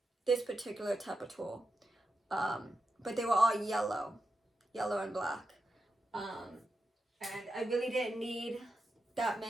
this particular type of tool, but they were all yellow and black, and I really didn't need that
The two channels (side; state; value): both; normal; correlation 0.88